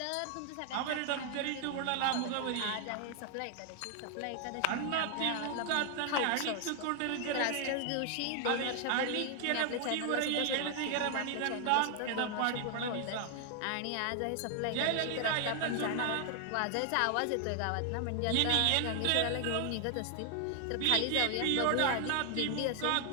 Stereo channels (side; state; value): both; different; correlation 0.00